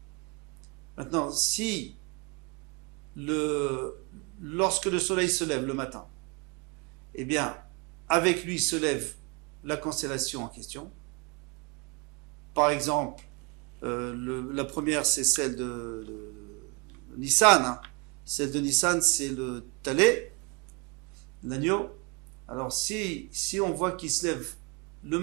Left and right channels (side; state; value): left; quieter; 31.2 dB